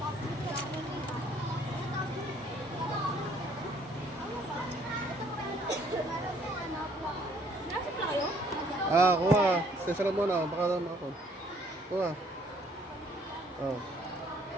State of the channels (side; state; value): both; normal; correlation 0.62